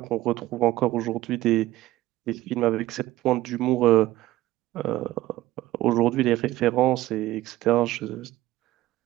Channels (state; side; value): quieter; left; 16.3 dB